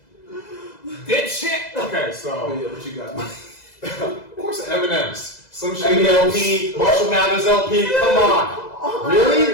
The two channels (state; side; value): late; right; 2.0 ms